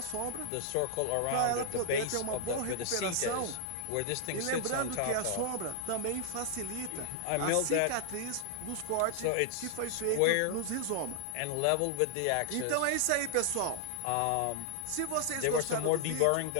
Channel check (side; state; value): both; different; correlation -0.01